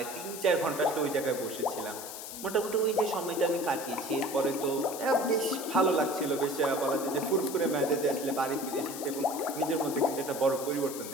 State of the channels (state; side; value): noise; left; hiss, 10 dB below the sound